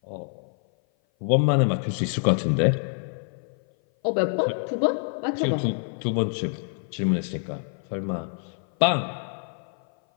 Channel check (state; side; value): silent; right; 57 dB below the other